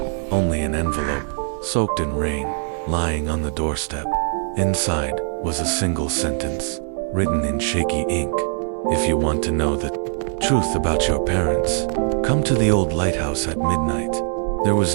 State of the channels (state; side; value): silent; left; digital silence